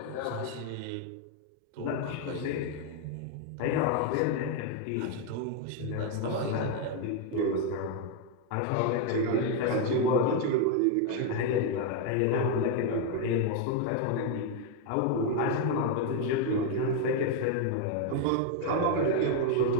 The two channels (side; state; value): both; different; correlation 0.01